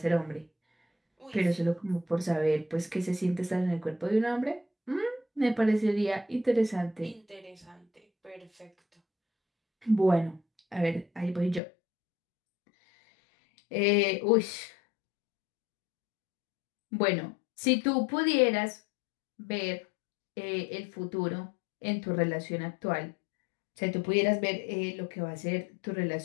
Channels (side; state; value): right; drops out; at 11.6 s